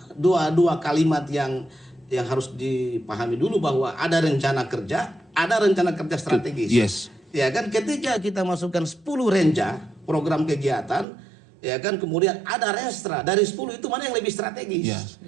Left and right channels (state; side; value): drops out; left; at 11.1 s